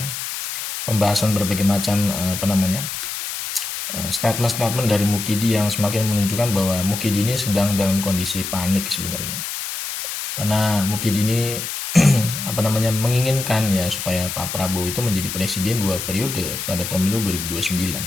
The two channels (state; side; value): noise; left; hiss, 5 dB below the sound